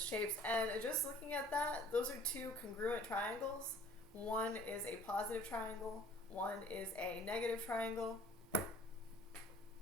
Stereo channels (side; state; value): both; normal; correlation 0.53